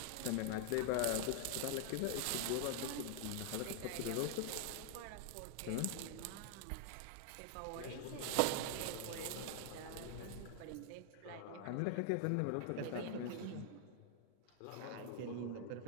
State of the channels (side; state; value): both; different; correlation 0.00